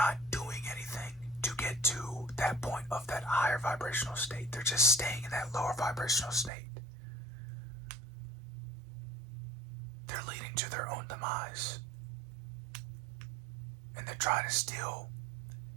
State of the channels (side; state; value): left; drops out; at 6.5 s